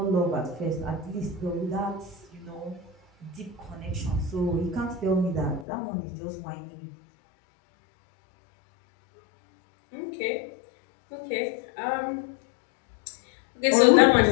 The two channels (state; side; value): drops out; right; at 5.7 s